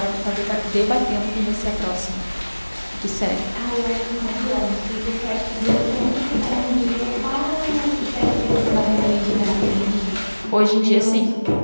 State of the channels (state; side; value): inverted; both; correlation -1.00